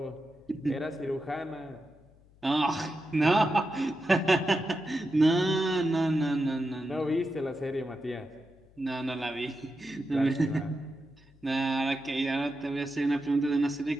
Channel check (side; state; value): left; noise; hum, 28 dB below the sound